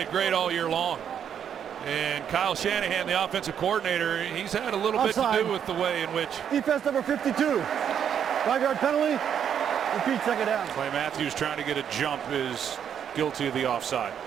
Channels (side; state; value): left; quieter; 8.6 dB